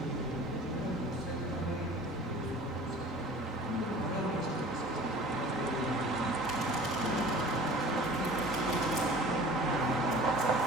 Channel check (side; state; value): both; normal; correlation 0.44